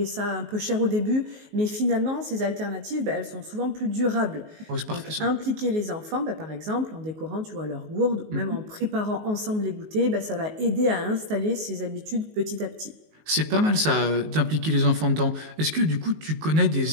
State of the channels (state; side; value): late; left; 19 ms